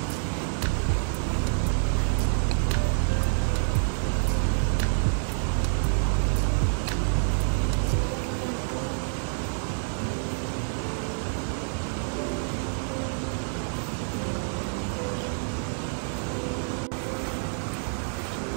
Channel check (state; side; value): silent; left; 60 dB below the other